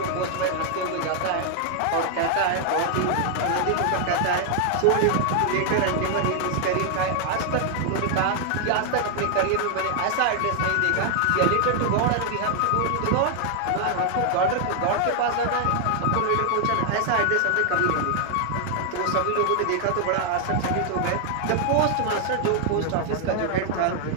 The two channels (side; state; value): both; different; correlation 0.00